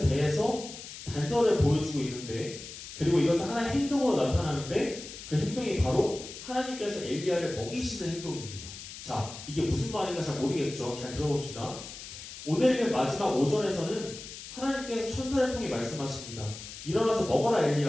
대해서 단서를 보여주고 있는데, 그리고 이것은 하나의 행동으로 나타나는데 그 행동이 바로 하나님께서 엘리야를 먹이시는 행동입니다. 자, 이게 무슨 말인가 잘 모르겠죠. 잘 들어봅시다. 오늘 마지막 5절에서는 하나님께서 천사를 통해 말씀하십니다. 일어나서 먹어라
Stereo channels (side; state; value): left; noise; hiss, 12 dB below the sound